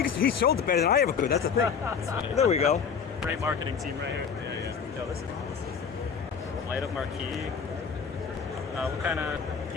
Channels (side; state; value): right; quieter; 6.5 dB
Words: he sold it better than I ever could. That's the thing. There we go. Great marketing team right here. Yeah. Yo, this is awesome. Light up marquee. What kind of